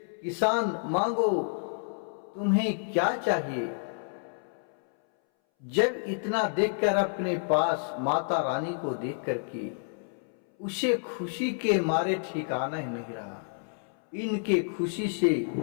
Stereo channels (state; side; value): silent; right; 58 dB below the other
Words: किसान, मांगो, तुम्हें क्या चाहिए। जब इतना देखकर अपने पास माता रानी को देख करके उसे खुशी के मारे ठिकाना ही नहीं रहा। इनके खुशी से